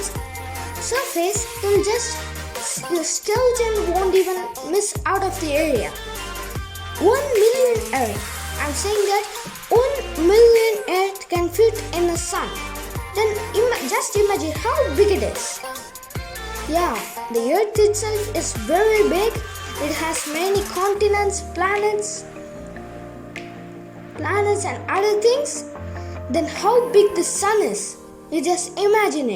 surface, your skeleton won't even miss out of the area. 1 million Earth. I'm saying that 1 million Earth can fit in the Sun. Then just imagine how big it is. Yeah, the Earth itself is very big. It has many continents, planets and other things. Then how big the Sun is? You just imagine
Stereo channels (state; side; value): identical; both; correlation 1.00